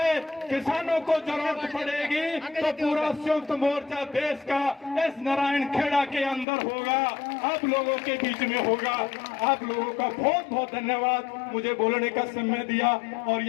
किसानों को जरूरत पड़ेगी, तो पूरा संयुक्त मोर्चा देश का इस नारायण खेड़ा के अंदर होगा, आप लोगों के बीच में होगा। आप लोगों का बहुत बहुत धन्यवाद मुझे बोलने का समय दिया। और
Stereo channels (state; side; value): drops out; right; at 6.5 s